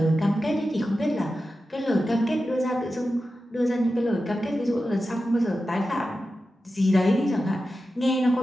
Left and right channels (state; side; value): normal; both; correlation 0.92